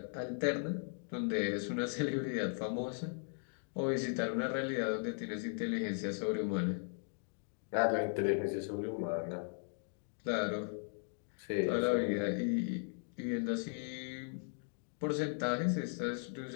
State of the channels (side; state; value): right; silent; 53 dB below the other